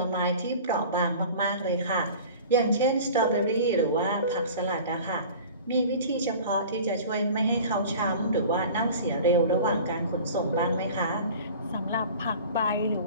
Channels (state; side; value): inverted; both; correlation -0.41